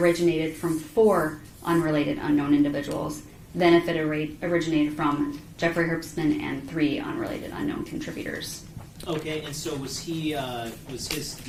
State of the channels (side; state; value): both; identical; correlation 1.00